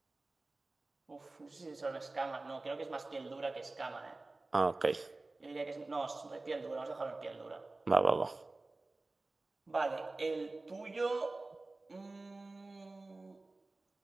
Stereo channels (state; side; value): quieter; left; 3.2 dB